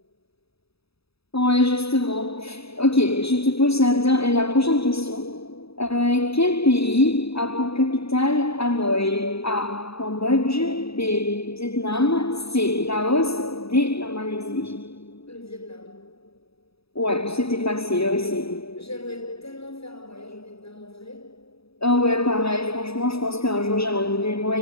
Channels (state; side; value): late; right; 0.77 ms